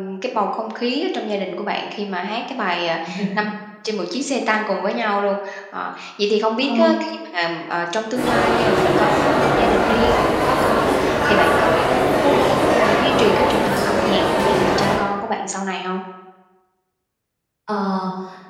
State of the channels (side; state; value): both; identical; correlation 1.00